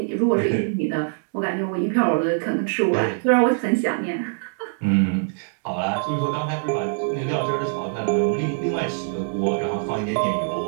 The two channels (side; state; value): left; silent; 63 dB below the other